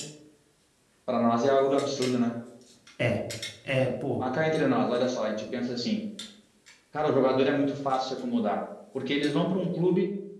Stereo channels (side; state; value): both; identical; correlation 1.00